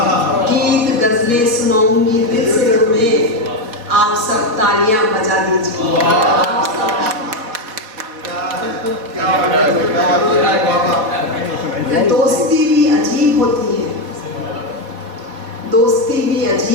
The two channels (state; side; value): late; left; 4.3 ms